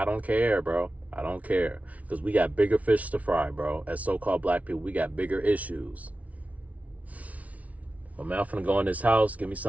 don't care, bro. I don't care. Because we got bigger fish to fry, bro. As so-called black people, we got bigger issues. But man, I'm finna go in this house, give me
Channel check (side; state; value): left; late; 0.068 ms